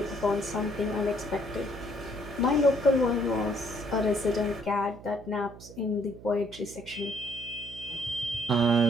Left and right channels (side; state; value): right; noise; hum, 17 dB below the sound